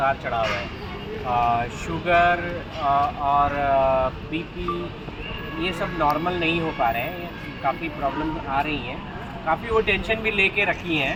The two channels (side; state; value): both; identical; correlation 1.00